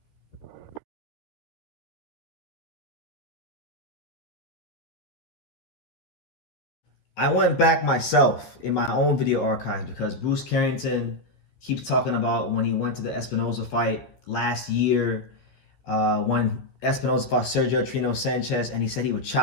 I went back myself in my own video archives because Bruce Carrington keeps talking about when he went to the Espinoza fight last year, when Espinoza fought Sergio Trino Sanchez, and he said he would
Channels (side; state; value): right; late; 14 ms